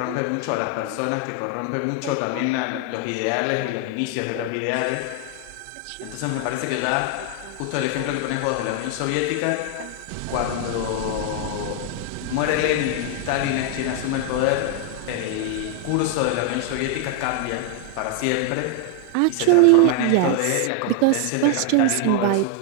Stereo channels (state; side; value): different; both; correlation 0.00